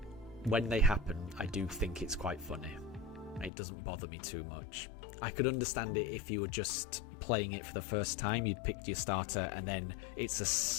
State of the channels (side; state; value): right; drops out; at 3.5 s